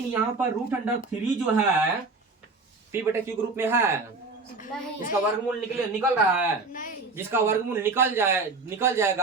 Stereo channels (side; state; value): left; quieter; 3.8 dB